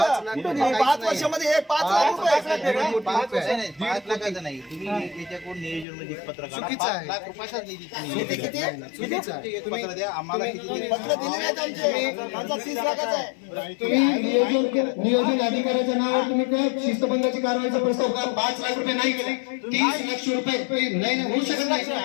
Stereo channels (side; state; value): right; drops out; at 5.9 s